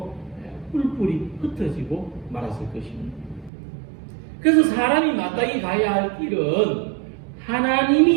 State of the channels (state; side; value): drops out; left; at 3.5 s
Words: 뿔뿔이 흩어지고 말았을 것입니다. 그래서 사람이 마땅히 가야 할 길은